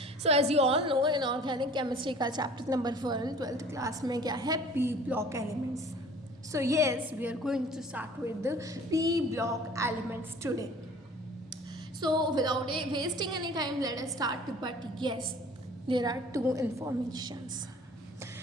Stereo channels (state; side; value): normal; both; correlation 0.48